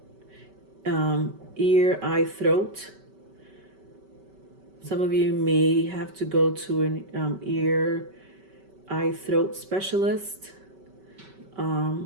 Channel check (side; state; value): left; late; 5.2 ms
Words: ear, eye, throat. Some of you may have to go to an ear, eye, throat specialist.